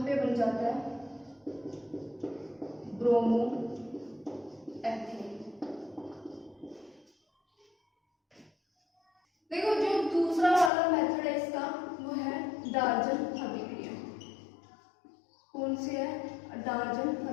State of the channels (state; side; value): drops out; right; at 10.7 s